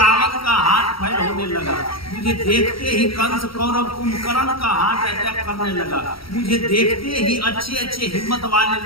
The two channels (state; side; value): late; right; 0.75 ms